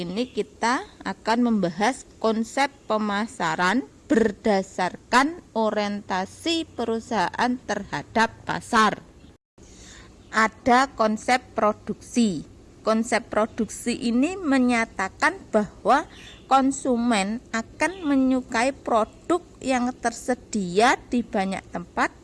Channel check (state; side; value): identical; both; correlation 1.00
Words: ini kita akan membahas konsep pemasaran berdasarkan orientasi perusahaan terhadap pasar. Ada konsep produksi. Konsep produksi ini menyatakan bahwa konsumen akan menyukai produk yang tersedia di banyak tempat